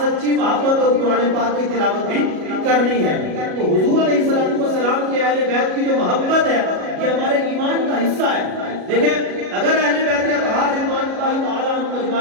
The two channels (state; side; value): late; left; 37 ms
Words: سچی محبت اور قرآن پاک کی تلاوت بھی کرنی ہے۔ تو حضور علیہ السلام کے اہل بیت کی جو محبت ہے یہ ہمارے ایمان کا حصہ ہے۔ دیکھیں اگر اہل بیت اطہار رضوان اللہ تعالیٰ عنہم